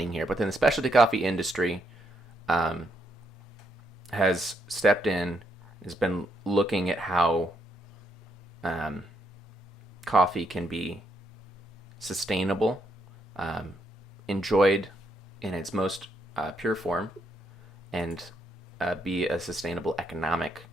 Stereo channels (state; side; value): normal; both; correlation 0.77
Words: here, but then the specialty coffee industry has stepped in, has been looking at how coffee can be sustainable, enjoyed in its most pure form, and be a sustainable economic